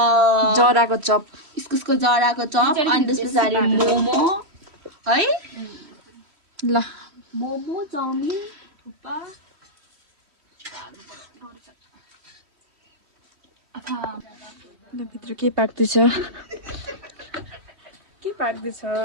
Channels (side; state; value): left; late; 3.1 ms